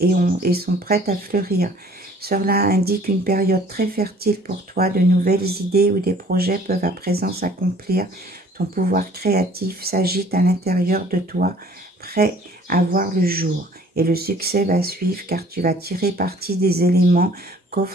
sont prêtes à fleurir. Cela indique une période très fertile pour toi. De nouvelles idées ou des projets peuvent à présent s'accomplir. Ton pouvoir créatif s'agite à l'intérieur de toi, prêt à voir le jour. Et le succès va suivre car tu vas tirer parti des éléments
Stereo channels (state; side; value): normal; both; correlation 0.54